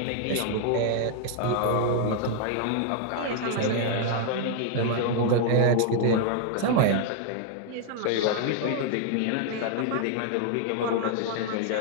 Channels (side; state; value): both; different; correlation 0.00